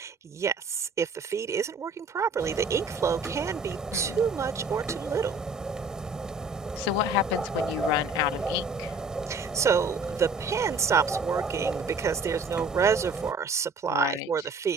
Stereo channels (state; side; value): quieter; left; 3.2 dB